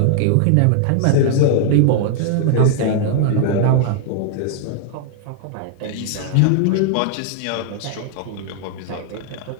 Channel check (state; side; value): different; both; correlation -0.01